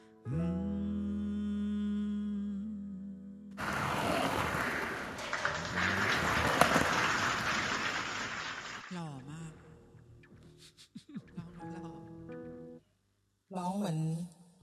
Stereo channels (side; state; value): both; identical; correlation 1.00